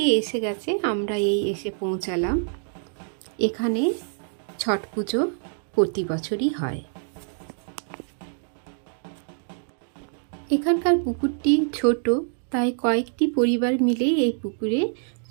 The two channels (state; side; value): silent; left; 61 dB below the other